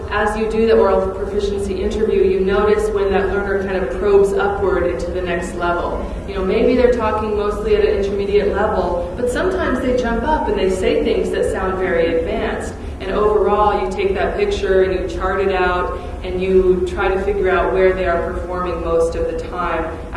as you do the oral proficiency interview, you notice when that learner kind of probes upward into the next level. Maybe they're talking mostly at an intermediate level, but sometimes they jump up and they say things that sound very advanced. And overall, you take that picture and you chart it out and you try to figure out where they are performing most of the time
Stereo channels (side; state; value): both; identical; correlation 1.00